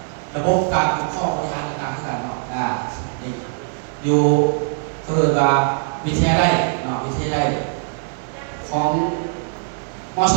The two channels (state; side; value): silent; left; digital silence